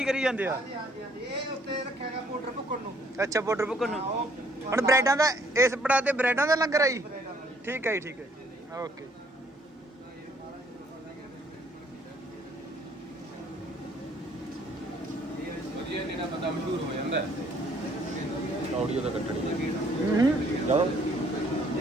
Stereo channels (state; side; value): normal; both; correlation 0.63